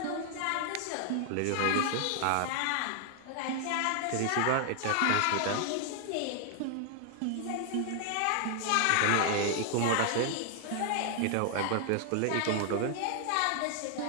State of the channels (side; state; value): both; different; correlation 0.00